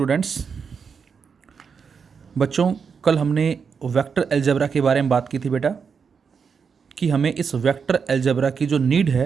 बच्चों, कल हमने वेक्टर अलजेब्रा के बारे में बात की थी बेटा, कि हमें इस वेक्टर अलजेब्रा की जो नीड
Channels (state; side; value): quieter; left; 6.0 dB